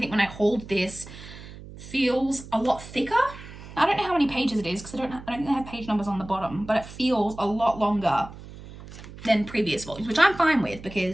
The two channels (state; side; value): noise; right; hum, 15 dB below the sound